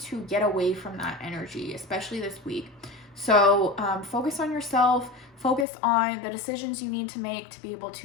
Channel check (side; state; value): right; drops out; at 5.7 s